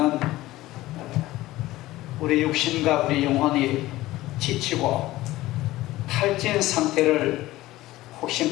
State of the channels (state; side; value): quieter; right; 17.1 dB